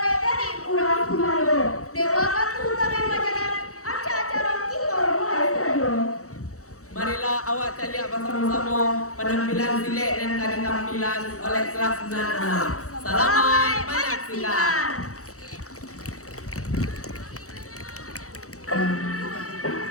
dari Urang Kumalo, Dewa Katu Tamen Majalah, acara kita mulai saja. Marilah awak cari bersama-sama penampilan silek dan kali tampilan oleh kelas 96. Selamat menyaksikan.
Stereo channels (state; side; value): late; right; 0.65 ms